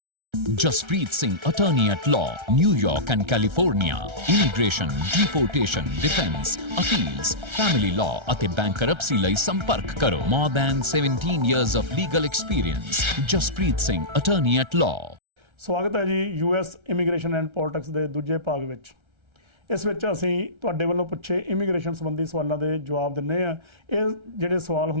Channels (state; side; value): late; left; 1.3 ms